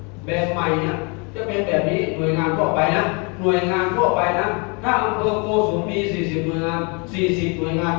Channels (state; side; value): quieter; right; 32.7 dB